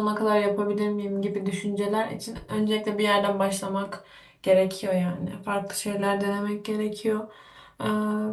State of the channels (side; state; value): both; identical; correlation 1.00